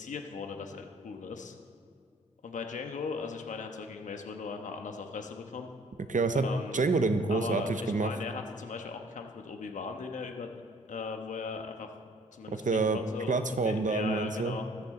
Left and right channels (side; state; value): both; normal; correlation 0.55